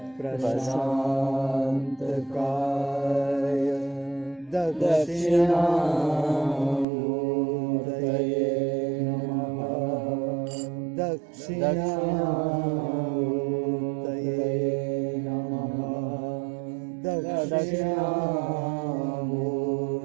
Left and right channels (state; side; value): drops out; left; at 6.9 s